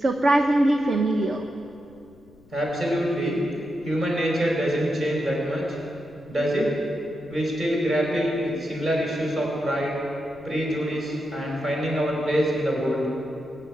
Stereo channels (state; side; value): noise; left; rumble, 28 dB below the sound